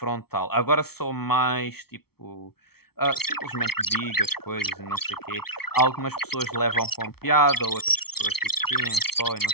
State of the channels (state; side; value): late; right; 0.95 ms